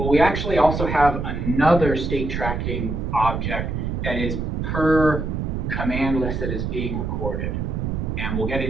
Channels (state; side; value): noise; right; rumble, 2 dB below the sound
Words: we actually also have another state tracking object that is per command list that is being recorded. And we'll get